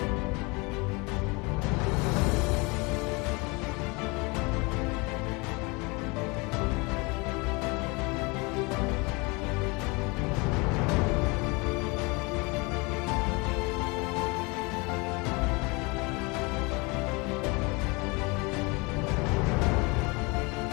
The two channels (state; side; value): quieter; right; 27.4 dB